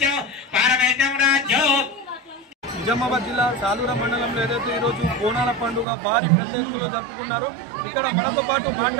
पारमेश्वरं राज्यं। నిజామాబాద్ జిల్లా సాలూర మండలంలో ఏదైతే ఈరోజు బోనాల పండుగ భారీ పెద్ద ఎత్తులో జరుపుకున్నారు. ఇక్కడ మనతో పాటు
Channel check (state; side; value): drops out; left; at 5.9 s